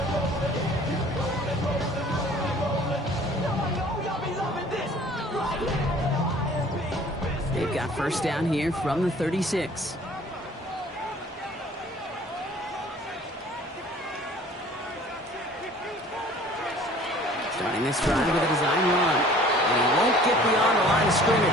They've got first down here from the 36. Starting this drive with a design run. And he won't get beyond the line of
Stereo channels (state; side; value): normal; both; correlation 0.51